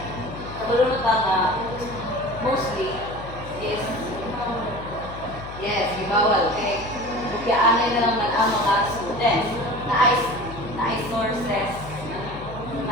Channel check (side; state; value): left; noise; hum, 13 dB below the sound